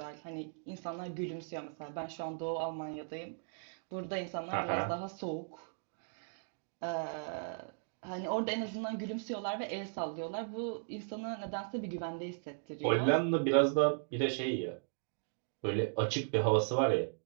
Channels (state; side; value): silent; left; digital silence